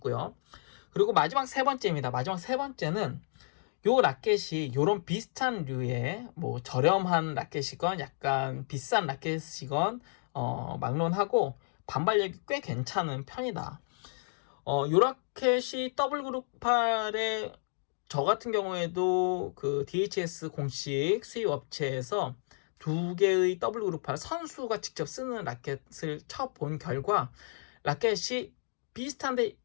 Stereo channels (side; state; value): right; silent; digital silence